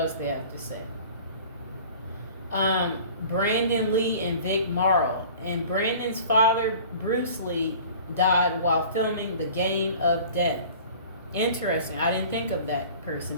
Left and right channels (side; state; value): both; inverted; correlation -0.44